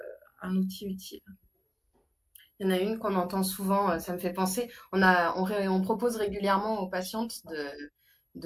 utile. Il y en a une qu'on entend souvent, ça me fait penser, on propose régulièrement aux patientes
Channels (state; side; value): identical; both; correlation 1.00